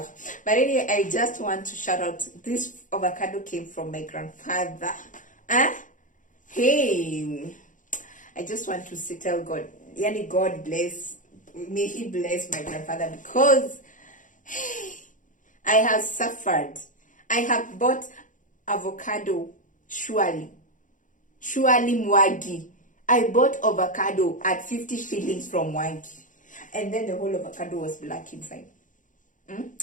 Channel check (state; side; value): late; right; 0.37 ms